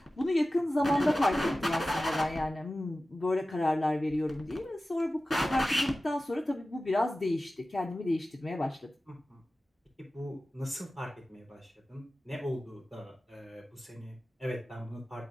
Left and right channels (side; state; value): both; normal; correlation 0.95